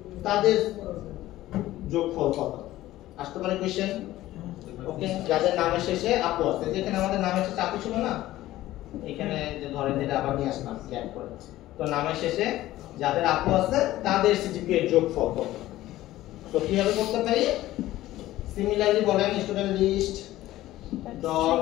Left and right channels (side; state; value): right; quieter; 15.5 dB